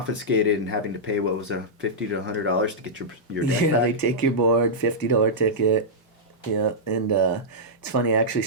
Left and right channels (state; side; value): normal; both; correlation -0.11